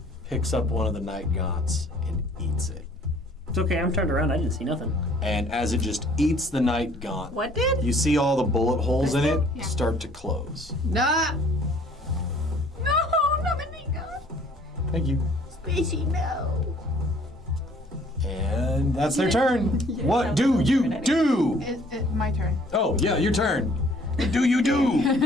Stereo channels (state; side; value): normal; both; correlation 0.57